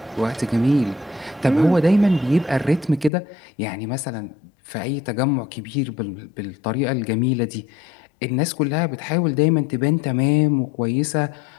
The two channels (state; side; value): drops out; right; at 3.1 s